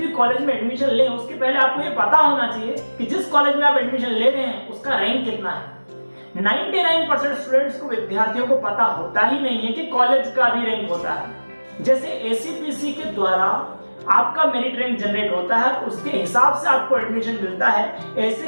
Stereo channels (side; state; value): both; inverted; correlation -1.00